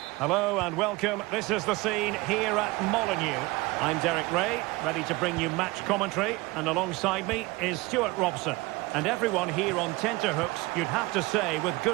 Hello and welcome. This is the scene here at Molineux. I'm Derek Ray, ready to bring you match commentary, and alongside me is Stuart Robson. And everyone here on tenterhooks, you'd have to say with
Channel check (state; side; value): quieter; left; 22.1 dB